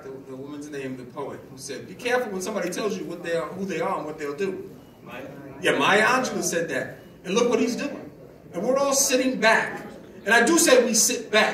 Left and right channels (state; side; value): identical; both; correlation 1.00